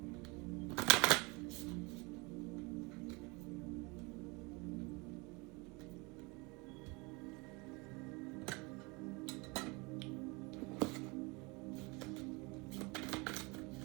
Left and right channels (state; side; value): quieter; left; 27.5 dB